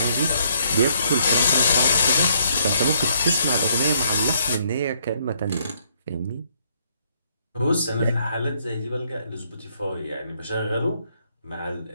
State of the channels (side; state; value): both; inverted; correlation -0.69